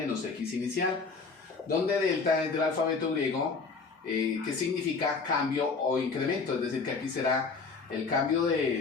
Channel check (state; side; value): quieter; right; 4.6 dB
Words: x inicial, donde delta es del alfabeto griego, que significa cambio o incremento, es decir, que aquí será el cambio